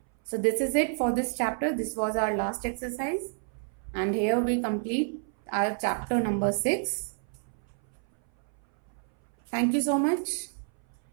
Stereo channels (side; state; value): left; silent; 58 dB below the other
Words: So this is it for this chapter. This was our last exercise. And here we complete our chapter number 6. Thank you so much.